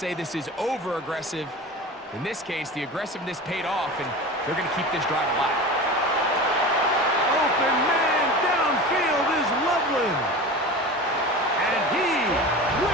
this is over-aggressive, in this case, the aggressiveness paid off, and they're going to keep this drive alive. Open man downfield is Loveland. And he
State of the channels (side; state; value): both; normal; correlation 0.32